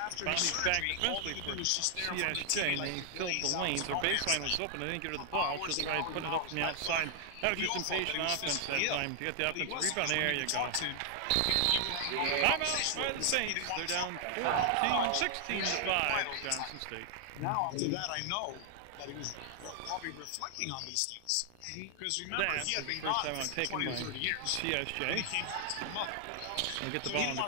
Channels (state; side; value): different; both; correlation 0.00